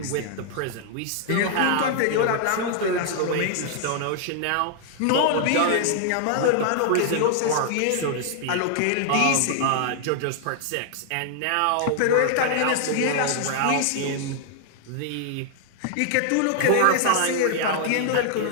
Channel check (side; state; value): both; different; correlation 0.00